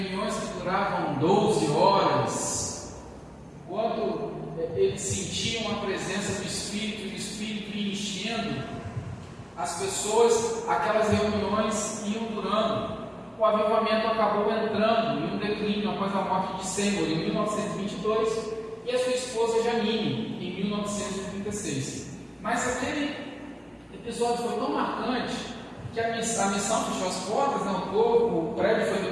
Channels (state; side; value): identical; both; correlation 1.00